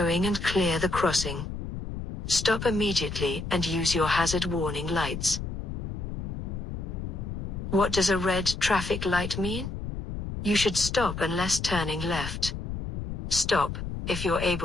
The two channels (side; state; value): left; noise; rumble, 6 dB below the sound